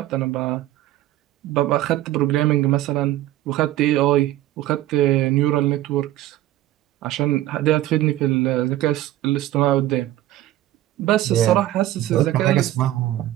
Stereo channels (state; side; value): quieter; left; 14.4 dB